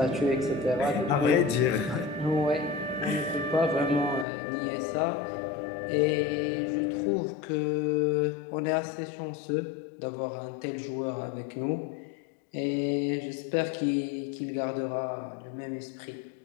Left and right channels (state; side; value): drops out; right; at 4.2 s